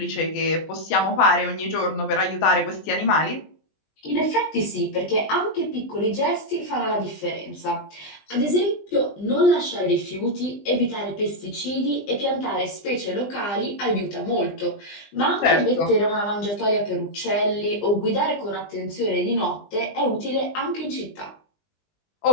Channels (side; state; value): right; late; 20 ms